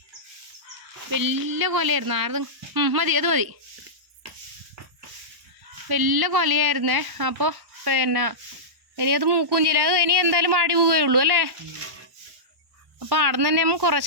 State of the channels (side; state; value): left; late; 1.0 ms